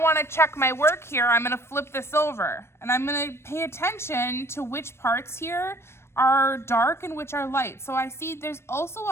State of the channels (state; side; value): late; right; 0.12 ms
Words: wanna check my work here, I'm gonna flip this over and I'm gonna pay attention to which parts here are dark and which are light. So I see there's also